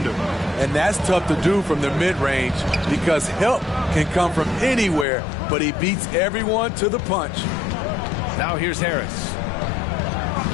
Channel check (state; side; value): drops out; right; at 5.1 s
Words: And that's tough to do from the mid-range because help can come from anywhere, but he beats everyone to the punch. Now here's Harris.